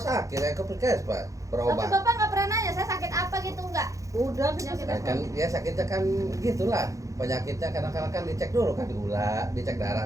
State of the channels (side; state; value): left; late; 0.16 ms